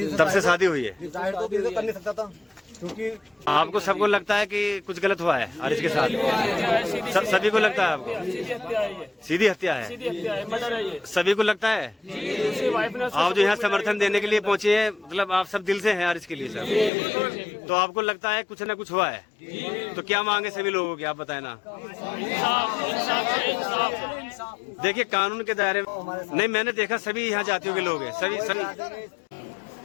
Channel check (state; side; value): drops out; right; at 16.9 s